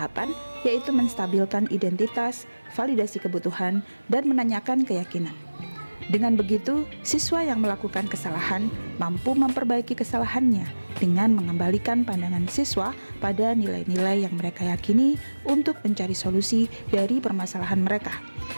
yaitu menstabilkan identitas, validasi kebutuhan, dan menanyakan keyakinan. Dengan begitu, siswa yang melakukan kesalahan mampu memperbaiki kesalahannya dengan mengembalikan pandangan siswa pada nilai-nilai yang mereka yakini untuk mencari solusi dari permasalahan mereka,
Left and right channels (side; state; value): both; inverted; correlation -1.00